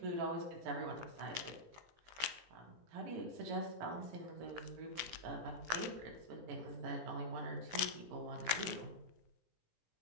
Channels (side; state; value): left; late; 17 ms